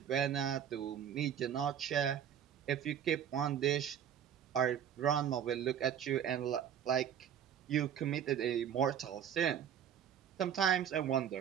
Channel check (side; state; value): left; quieter; 8.9 dB